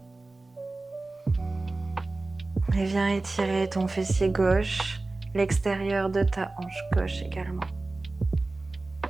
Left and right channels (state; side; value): quieter; left; 3.2 dB